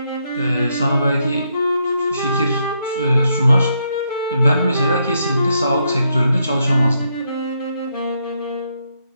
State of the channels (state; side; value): inverted; both; correlation -0.77